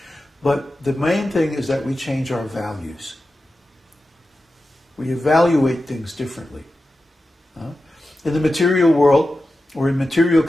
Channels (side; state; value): both; normal; correlation 0.92